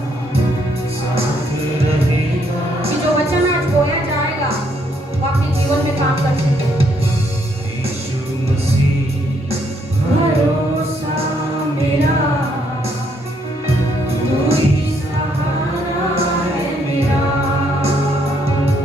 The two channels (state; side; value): normal; both; correlation 0.71